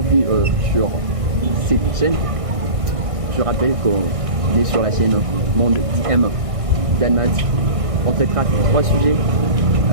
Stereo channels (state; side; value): late; left; 1.6 ms